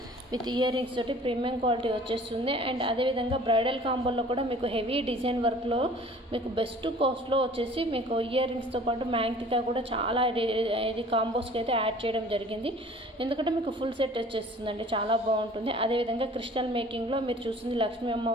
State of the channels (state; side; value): normal; both; correlation 0.49